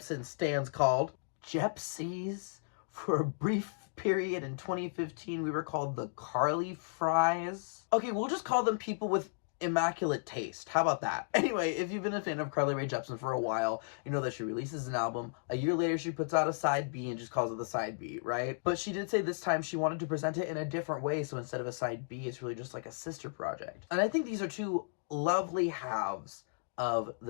stands called? Jepsies. For a brief period in 2015, we were called the Carly Fries. Okay, we'll just call them people with immaculate taste. How about that? Anyway, if you've been a fan of Carly Rae Jepsen for a while, you know that she releases an album. A year later, she puts out a side B and just calls it the side B, right? But she did say this time she wanted to present it in a different way, so instead of a side B, it's really just like a sister project. And I think these are two lovely halves of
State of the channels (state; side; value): silent; right; digital silence